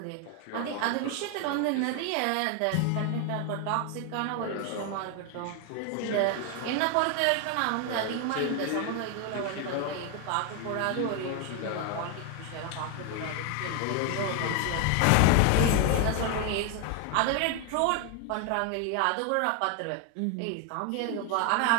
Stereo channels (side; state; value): both; different; correlation 0.01